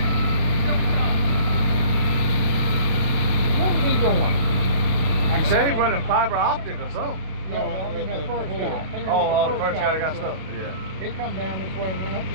What was he doing? He said he running fiber optic or something. Yeah, well, I mean that first guy. Oh, the first guy that got stuck. Yeah. He come down this way and went up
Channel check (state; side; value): late; left; 32 ms